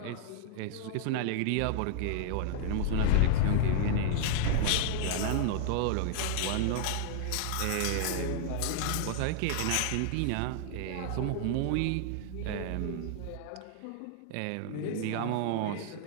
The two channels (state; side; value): different; both; correlation -0.01